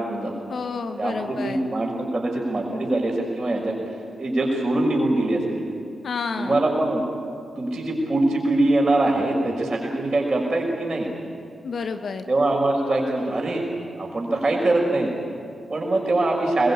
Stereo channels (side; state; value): both; normal; correlation 0.92